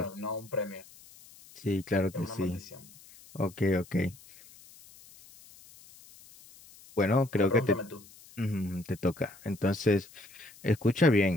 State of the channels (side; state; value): left; noise; hiss, 23 dB below the sound